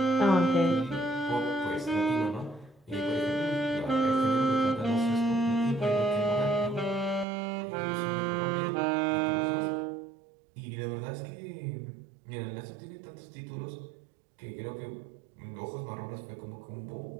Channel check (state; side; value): drops out; left; at 7.2 s